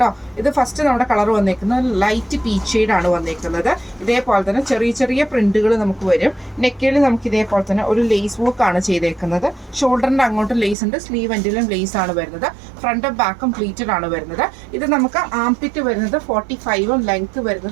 ഇത് ഫസ്റ്റ് നമ്മുടെ കളർ വന്നേക്കുന്നത് ലൈറ്റ് പീച്ച് ഷെയ്ഡ് ആണ് വന്നേക്കുന്നത്. ഇതേപോലെ തന്നെ ചെറിയ ചെറിയ പ്രിന്റുകൾ നമുക്ക് വരും. നെക്കിൽ നമുക്ക് ഇതേപോലെ തന്നെ ഒരു ലേസ് വർക്ക് ആണ് ചെയ്തേക്കുന്നത്. ഷോൾഡറിന്റെ അങ്ങോട്ട് ലേസ് ഉണ്ട്, സ്ലീവ് എൻഡിലും ലേസ് ആണ് വരുന്നത്. ഫ്രണ്ടും ബാക്കും പ്ലീറ്റഡ് ആണ് വരുന്നത്. ഇത് നമുക്ക് ആംപിറ്റ് വരുന്നത് 45ഉം ലെങ്ത്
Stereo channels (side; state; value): left; drops out; at 10.8 s